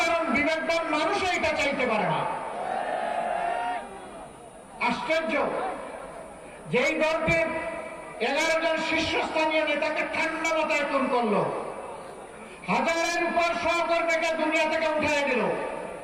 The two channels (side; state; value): both; identical; correlation 1.00